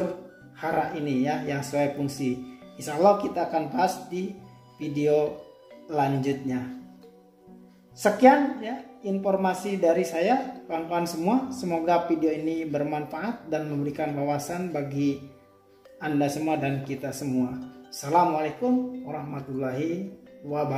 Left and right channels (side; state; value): both; identical; correlation 1.00